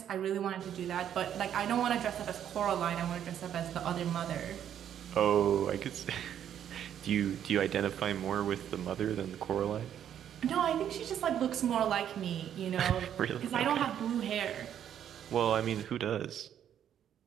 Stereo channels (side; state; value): left; quieter; 9.8 dB